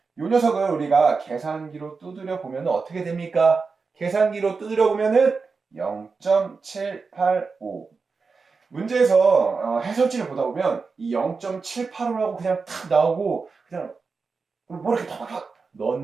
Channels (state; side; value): quieter; left; 4.7 dB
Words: 요 녀석을 우리가 계산기로 두드려 보면 어떻게 됩니까? 계산기로 두드려 보면은 0.785. 문제에서 해설지를 보다 보면 이 0.785라고 그냥 탁 나오고 그냥 뭐 이렇게 탁탁